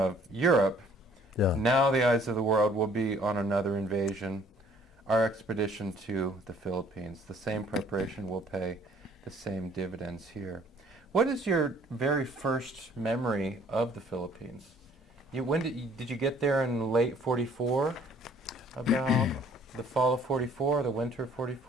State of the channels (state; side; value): normal; both; correlation 0.57